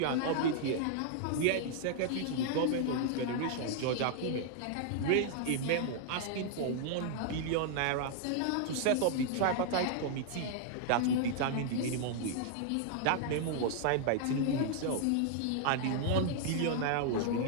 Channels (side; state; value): both; different; correlation -0.01